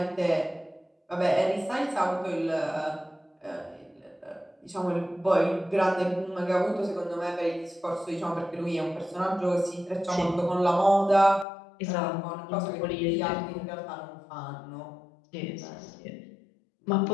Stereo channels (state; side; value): drops out; right; at 11.5 s